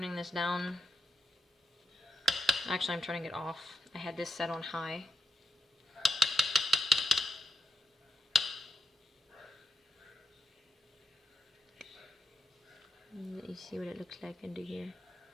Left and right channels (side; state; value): both; normal; correlation 0.82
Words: this down. Actually, I'm turning it off. I had this set on high. You see what it looks like under here.